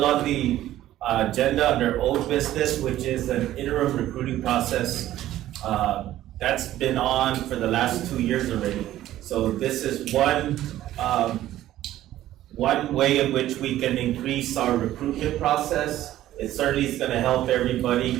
on the agenda under old business, which is an interim recruiting process. That's been on for the last 2 years already. So this is one way in which we can increase our recruitment process. It certainly is going to help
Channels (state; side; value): quieter; left; 13.7 dB